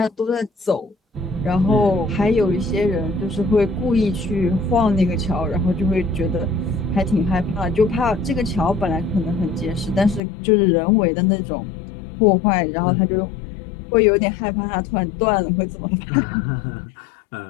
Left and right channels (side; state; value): right; drops out; at 10.2 s